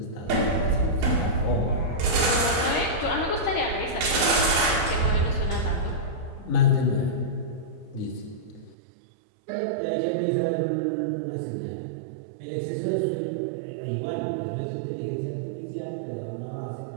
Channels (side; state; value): left; drops out; at 8.8 s